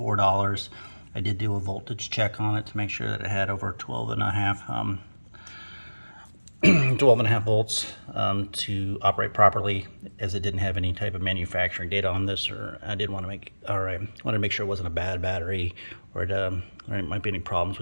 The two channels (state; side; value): inverted; both; correlation -1.00